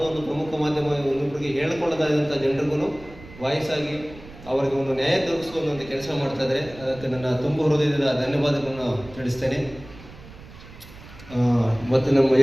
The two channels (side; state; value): right; noise; rumble, 18 dB below the sound